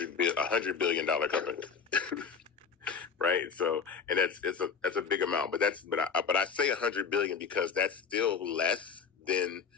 billion company, right? So, and that's a big amount, but I say 100 billion because that's still less than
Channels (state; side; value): quieter; right; 6.1 dB